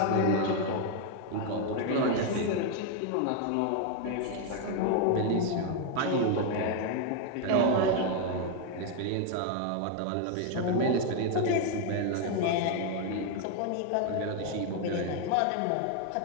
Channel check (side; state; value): both; different; correlation 0.00